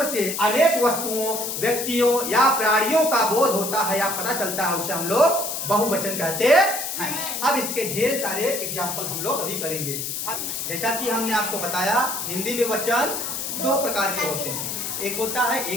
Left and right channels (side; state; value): left; noise; hiss, 4 dB below the sound